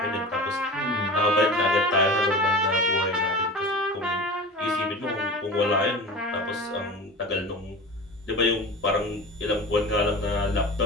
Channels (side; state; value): both; normal; correlation 0.34